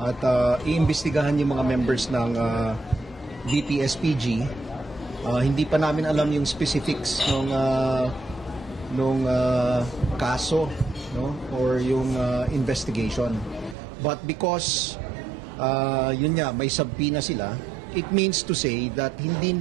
iimbestigahan yung mga members ng BPSPG. Hindi pa namin alam yung specifics nung kaso or yung investigation. But because yun nga, may subpoena sila, it means to say that hindi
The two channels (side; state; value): left; drops out; at 13.8 s